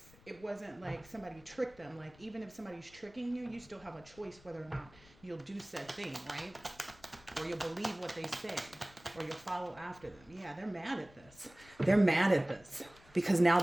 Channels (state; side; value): noise; left; rumble, 24 dB below the sound